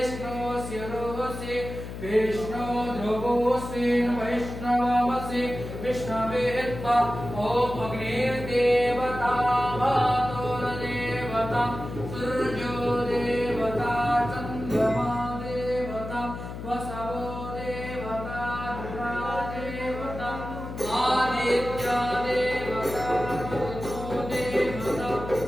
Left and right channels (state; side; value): noise; left; hum, 9 dB below the sound